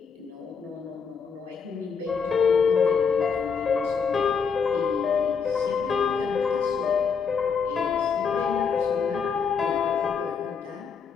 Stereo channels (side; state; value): right; quieter; 6.0 dB